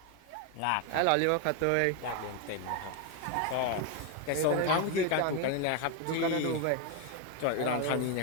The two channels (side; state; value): both; different; correlation 0.01